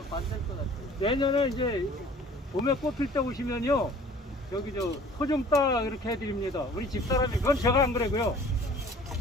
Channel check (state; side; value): normal; both; correlation 0.50